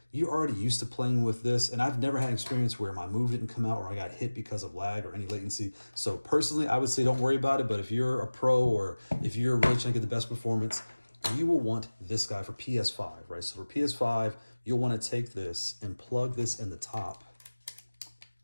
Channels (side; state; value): both; inverted; correlation -1.00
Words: you're already used to playing with this. And I've never had experience where my move didn't come out or I got hit because of lag or any latency. So personally, I would say don't worry about it. But if you're a pro or if you're really trying to get the best performance, you will want this guy for PS5, right? So for PS5, you'll want to take this and plug this in the top,